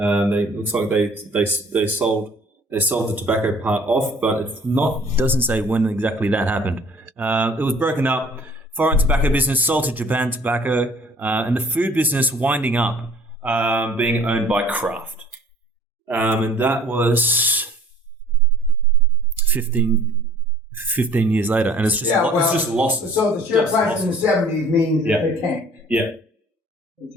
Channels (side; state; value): both; normal; correlation 0.53